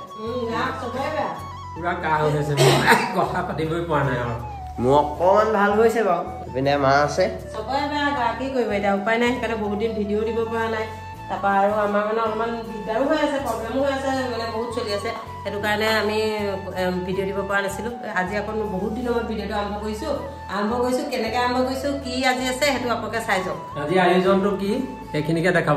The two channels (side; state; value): both; identical; correlation 1.00